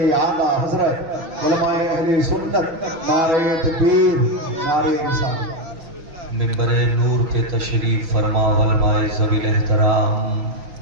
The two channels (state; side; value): late; left; 6.1 ms